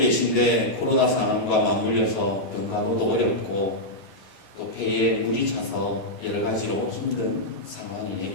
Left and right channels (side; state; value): right; late; 11 ms